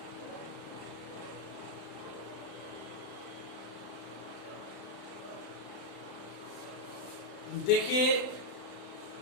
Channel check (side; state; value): right; late; 35 ms